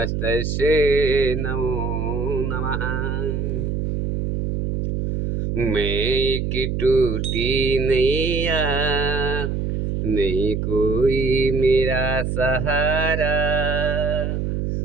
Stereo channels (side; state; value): right; noise; hum, 1 dB below the sound